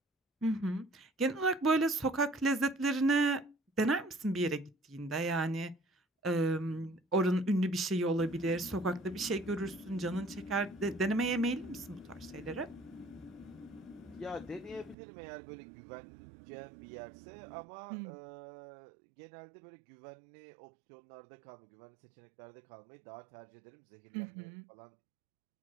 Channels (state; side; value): drops out; left; at 15.0 s